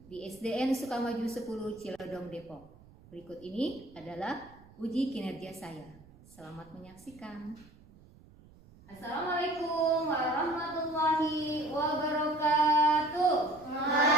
di SDN Sukamaju 10 Cilodong Depok. Berikut ini adalah uji kinerja saya. Selamat menyaksikan. Assalamualaikum warahmatullahi wabarakatuh.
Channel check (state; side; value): noise; right; rumble, 24 dB below the sound